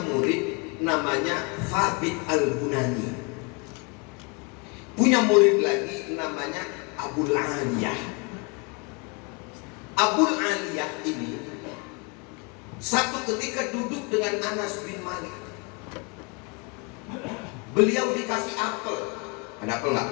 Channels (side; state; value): right; quieter; 30.3 dB